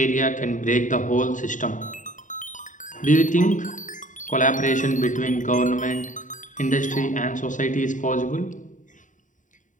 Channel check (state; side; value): late; right; 0.37 ms